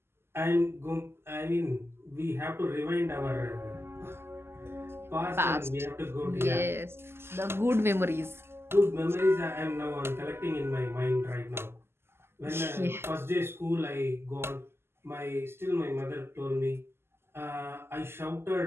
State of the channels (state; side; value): late; left; 0.12 ms